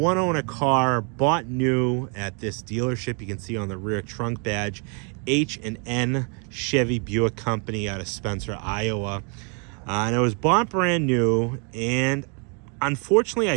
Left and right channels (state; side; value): quieter; left; 37.8 dB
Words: car, bought new at this dealership. You can see on the rear trunk badge, H&N Chevy Buick Company out of Spencer, Iowa. And it was bought brand new, and unfortunately,